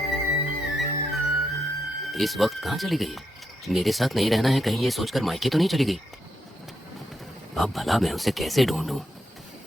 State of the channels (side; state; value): both; normal; correlation 0.81